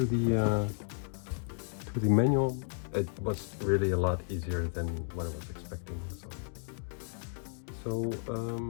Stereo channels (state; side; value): silent; right; 56 dB below the other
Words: the manual. It was really a lot easier than what I was expecting. So